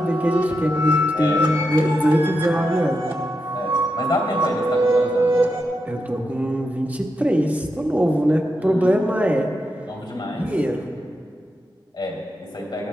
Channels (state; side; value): normal; both; correlation 0.86